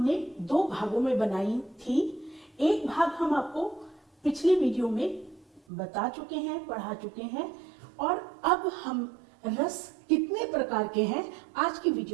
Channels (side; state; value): left; drops out; at 5.6 s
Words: दो भागों में बनाई थी। एक भाग हम आपको पिछली वीडियो में बता चुके हैं, पढ़ा चुके हैं, और अब हम रस कितने प्रकार के हैं आज की